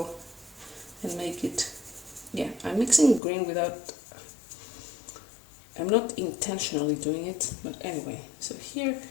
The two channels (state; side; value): drops out; right; at 3.2 s